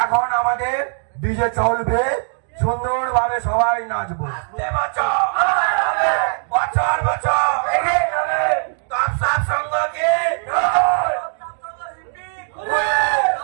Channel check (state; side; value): silent; left; 65 dB below the other